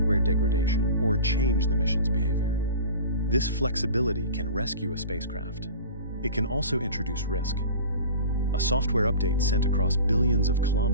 degradation or change the mission's behavior. This flexibility can rescue a spacecraft. It can also introduce risk. A software update sent across billions of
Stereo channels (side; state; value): both; inverted; correlation -0.37